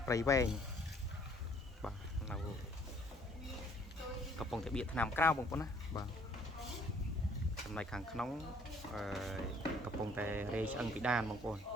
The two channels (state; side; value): normal; both; correlation 0.59